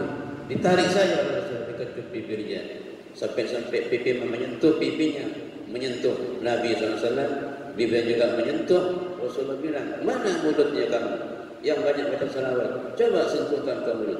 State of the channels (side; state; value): both; identical; correlation 1.00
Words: Ditarik saja oleh Rasul, dikecup bibirnya. Sampai pipi menyentuh pipinya, menyentuh Nabi SAW. Bibirnya juga menyentuh. Rasulullah bilang, mana mulutnya kamu yang banyak baca salawat? Coba sentuhkan ke mulut